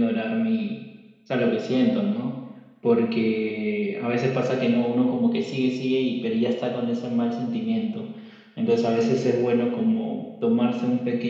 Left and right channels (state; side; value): identical; both; correlation 1.00